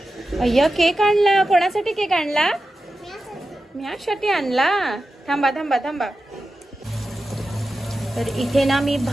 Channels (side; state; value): both; normal; correlation 0.92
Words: अय्या, केक आणला. कोणासाठी केक आणला? म्यासाठी आणला. थांबा. तर इथे ना मी